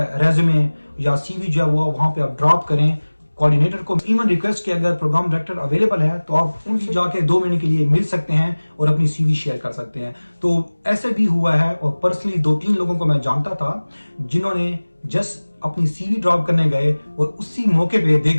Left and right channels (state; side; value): inverted; both; correlation -1.00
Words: रेज्यूमे या सीवी जो है वो वहां पे आप ड्रॉप करें। कोऑर्डिनेटर को इवन रिक्वेस्ट कि अगर प्रोग्राम डायरेक्टर अवेलेबल है तो आप उनसे जाके 2 महीने के लिए मिल सकते हैं और अपनी सीवी शेयर कर सकते हैं। तो ऐसे भी हुआ है और पर्सनली 2-3 लोगों को मैं जानता था जिन्होंने जस्ट अपनी सीवी ड्रॉप करने गए और उसी मौके पे दे